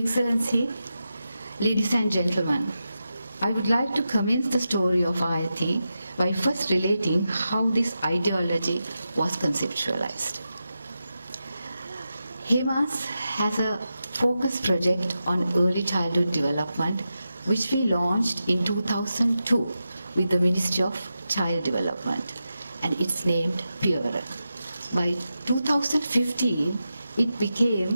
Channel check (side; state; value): both; inverted; correlation -0.90